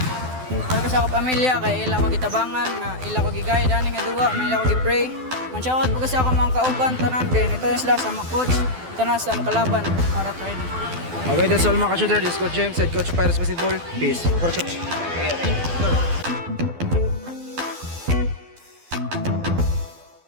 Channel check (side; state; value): left; late; 12 ms